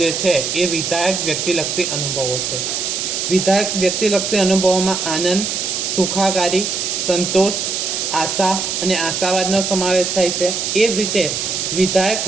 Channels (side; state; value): right; noise; hiss, 2 dB below the sound